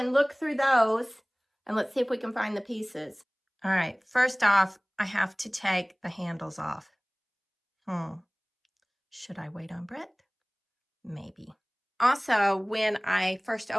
look through those, and let's see if we can find the pieces. All right, first off, I have to take the handles off. Should I wait on Brett? Maybe. Also, when I first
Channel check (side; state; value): both; identical; correlation 1.00